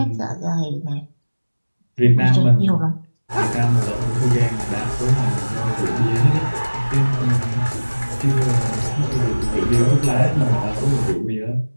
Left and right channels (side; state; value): both; inverted; correlation -1.00